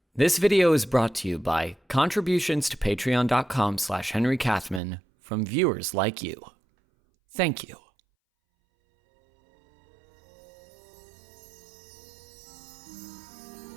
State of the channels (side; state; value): left; drops out; at 4.8 s